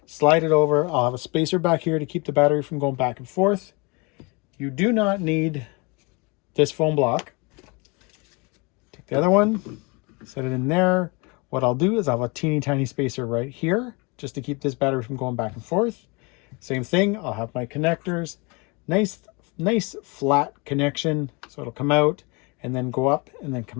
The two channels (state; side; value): quieter; right; 28.8 dB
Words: slide it over. I'll have a spacer back here to keep the battery from going back and forth. You do not need this foam block. Take the other one, set it in there. What I'll do is I'll have a teeny tiny spacer right here, just to keep this battery from going back and forth. Same thing, I'll have my connectors, nice flat connection, so it'll come out and then go up and then